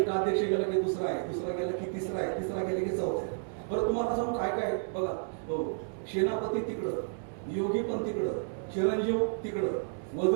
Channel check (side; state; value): left; silent; digital silence